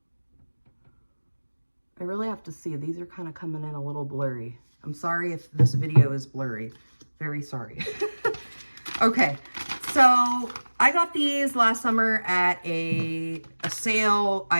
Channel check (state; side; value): inverted; both; correlation -1.00